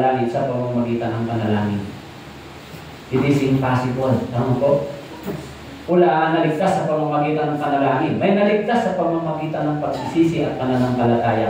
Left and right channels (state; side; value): identical; both; correlation 1.00